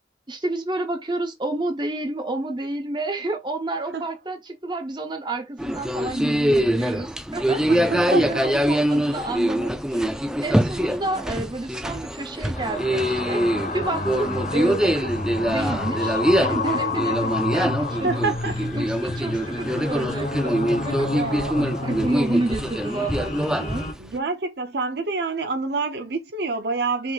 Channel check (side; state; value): both; normal; correlation 0.70